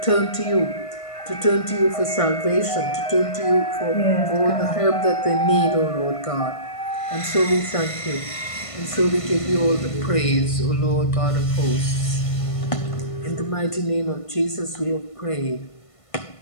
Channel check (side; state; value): right; late; 1.5 ms